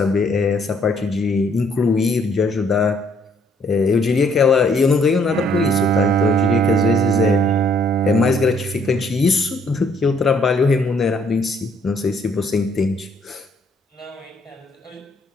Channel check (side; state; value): both; normal; correlation 0.65